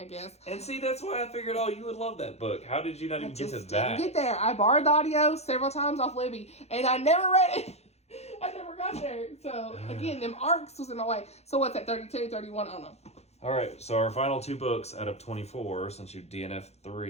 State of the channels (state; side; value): late; right; 0.31 ms